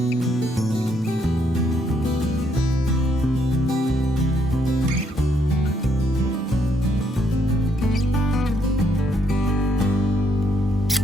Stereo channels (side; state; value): both; normal; correlation 0.72